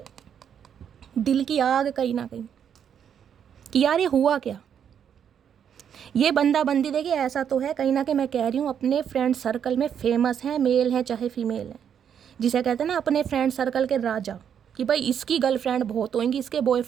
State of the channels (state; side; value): quieter; left; 8.4 dB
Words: दिल की आग कहीं ना कहीं, कि यार ये हुआ क्या। ये बंदा बंदी देखिए ऐसा तो है कहीं ना कहीं, मैं कह रही हूँ अपने फ्रेंड सर्कल में फेमस हैं, मेल हैं चाहे फीमेल हैं, जिसे कहते हैं ना अपने फ्रेंड सर्कल के राजा, कि भाई इसकी गर्लफ्रेंड बहुत होंगी, इसके